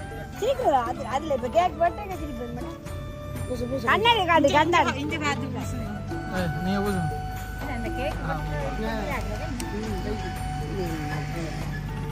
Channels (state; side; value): identical; both; correlation 1.00